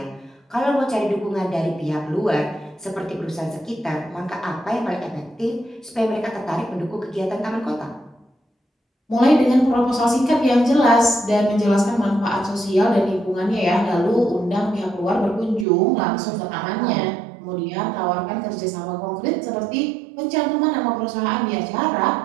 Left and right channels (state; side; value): drops out; left; at 15.7 s